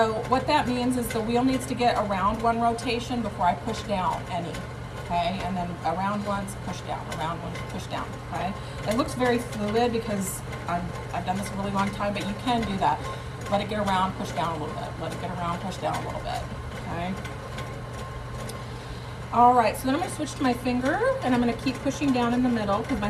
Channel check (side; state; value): both; identical; correlation 1.00